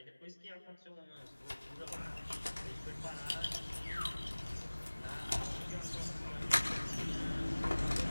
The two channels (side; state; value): both; inverted; correlation -1.00